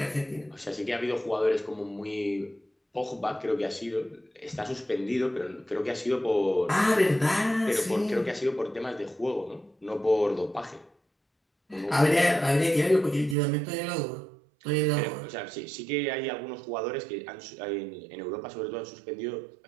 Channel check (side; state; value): left; drops out; at 13.4 s